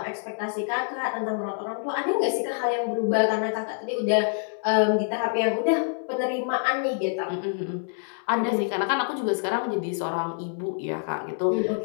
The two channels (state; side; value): silent; right; 61 dB below the other